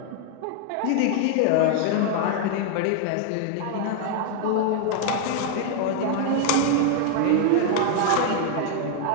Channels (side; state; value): both; different; correlation 0.00